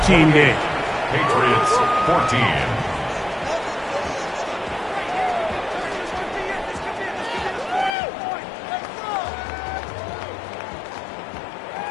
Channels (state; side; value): drops out; right; at 8.0 s